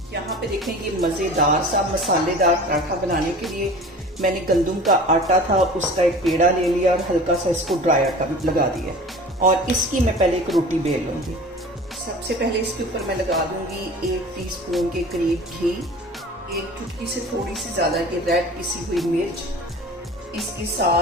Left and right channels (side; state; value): both; normal; correlation 0.40